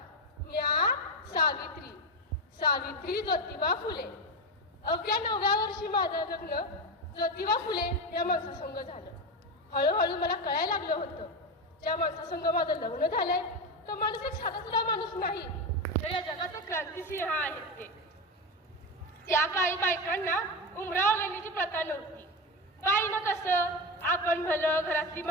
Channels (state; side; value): normal; both; correlation 0.16